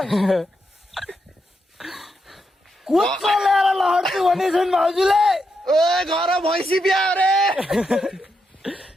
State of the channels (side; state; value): both; normal; correlation 0.83